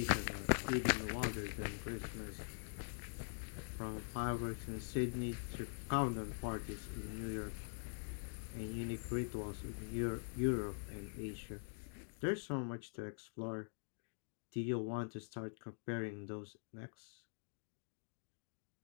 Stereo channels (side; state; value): right; silent; digital silence